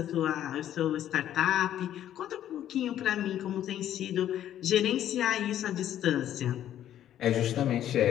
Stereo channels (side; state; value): right; quieter; 11.4 dB